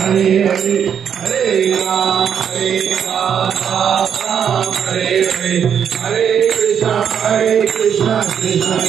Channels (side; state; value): left; quieter; 8.1 dB